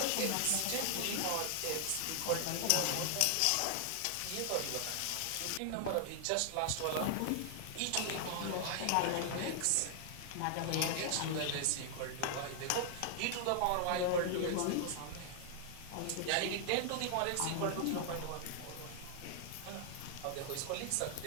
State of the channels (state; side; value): different; both; correlation 0.00